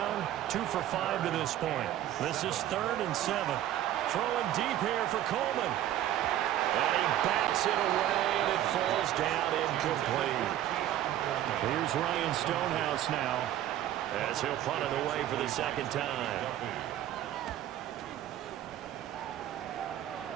2 for 5 to this point. This is 3rd and 7. Throwing deep here for Coleman. And he backs it away, and it falls down incomplete. Here's Ryan Stonehouse now, as he'll punt it away for the 2nd time.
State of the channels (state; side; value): quieter; left; 12.4 dB